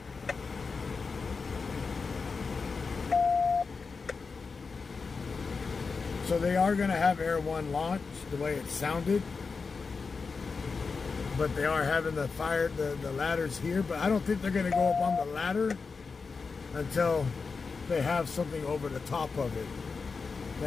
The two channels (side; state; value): right; quieter; 4.7 dB